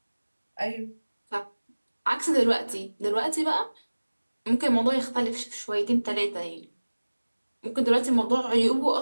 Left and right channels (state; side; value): inverted; both; correlation -1.00